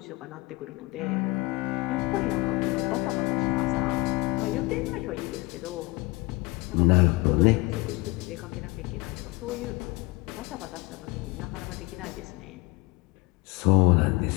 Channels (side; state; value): right; quieter; 23.9 dB